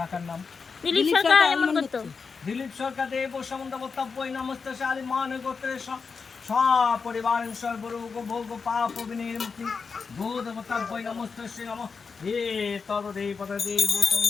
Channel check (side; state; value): right; quieter; 5.2 dB